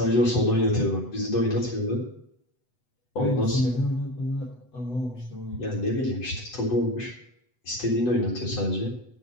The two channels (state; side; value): late; right; 8.0 ms